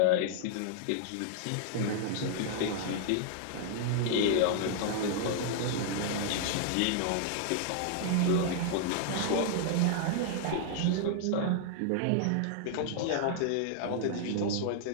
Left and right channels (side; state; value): both; different; correlation -0.01